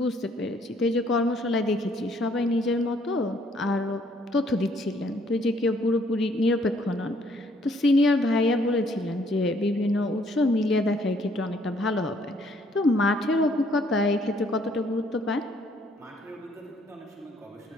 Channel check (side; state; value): both; normal; correlation 0.65